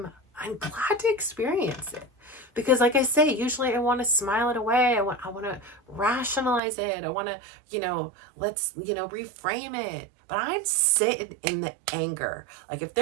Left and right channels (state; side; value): drops out; left; at 6.6 s